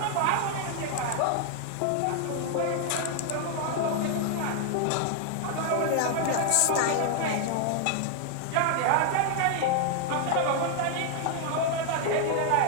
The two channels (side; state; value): both; different; correlation 0.00